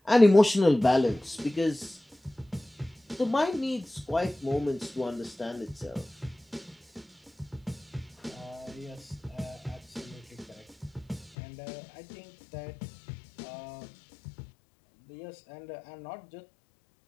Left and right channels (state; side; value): drops out; right; at 11.4 s